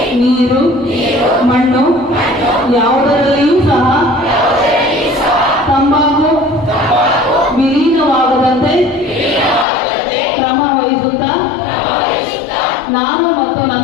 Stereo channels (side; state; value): right; drops out; at 9.7 s